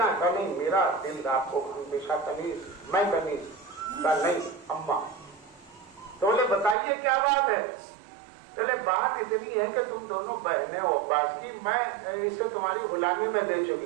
ہیں. نہیں, میرا دل آپ کو ہمیشہ کنیز, میں کنیز کا نہیں اماں. تو بولے بتائیے کیا بات ہے؟ چلے بات اتنی ہے کہ تم دونوں بہنیں ہو عباس کی, میں اسے تمہاری غلامی میں دے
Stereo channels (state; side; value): drops out; left; at 6.8 s